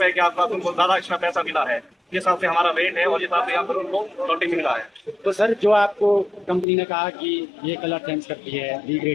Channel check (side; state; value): right; drops out; at 6.7 s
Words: के आसपास उनको ज्यादा एक्स्ट्रा पैसा मिला है। जिस हिसाब से हमारा रेट है और जिस हिसाब से यहाँ पर उनको शॉर्टिंग मिला है। तो सर, जो आपको कंपनी ने कहा कि ये कलर सेंस करती है, बी